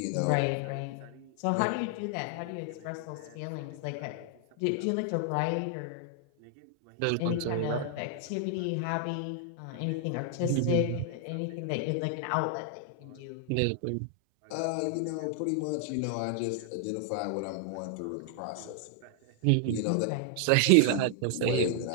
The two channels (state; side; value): different; both; correlation 0.00